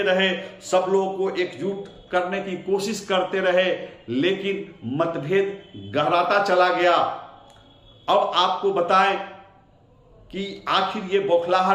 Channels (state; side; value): identical; both; correlation 1.00